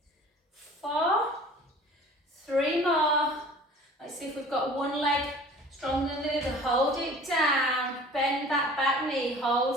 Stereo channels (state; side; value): normal; both; correlation 0.46